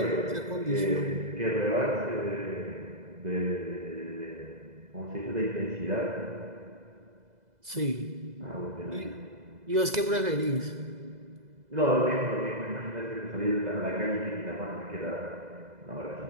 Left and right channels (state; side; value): late; left; 2.0 ms